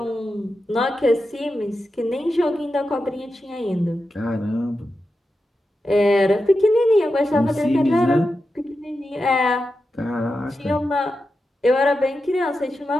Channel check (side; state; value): both; normal; correlation 0.90